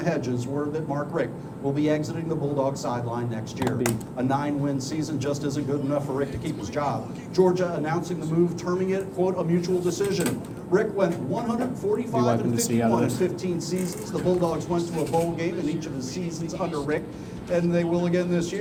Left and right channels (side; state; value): both; identical; correlation 1.00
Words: hedges, word that Mark Richt will be exiting the Bulldog sideline next year. A 9-win season just isn't good enough for Richt to keep his job. Georgia announcing the move, terming it, quote, a mutual decision. Richt went 145 and 51 in 15 seasons. The Bulldogs went to a bowl game in each of his seasons under Richt, and they will again this